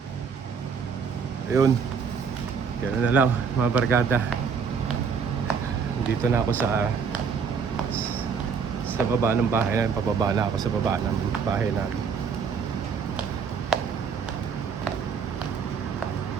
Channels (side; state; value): left; quieter; 6.2 dB